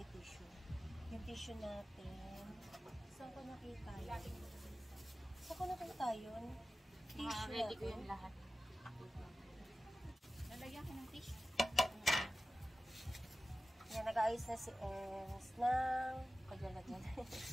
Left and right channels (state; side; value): normal; both; correlation 0.95